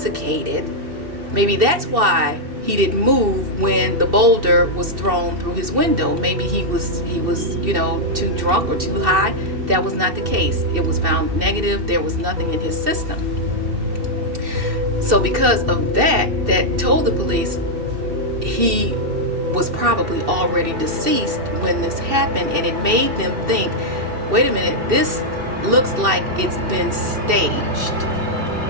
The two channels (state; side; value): late; left; 2.7 ms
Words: maybe that's why he didn't move when the boulder was thrown through his window. Maybe he was too drunk or too high. That was not the case. It was found negative. There was nothing in his system. So because of that told the police he was probably already deceased when this happened, and it made them think, wait a minute, this looks like it's been staged.